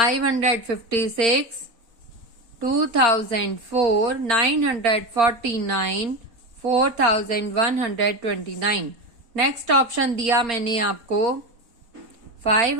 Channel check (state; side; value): late; left; 4.3 ms